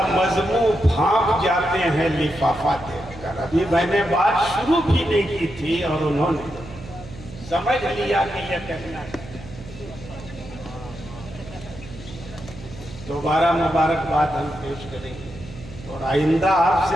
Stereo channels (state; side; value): noise; right; hum, 16 dB below the sound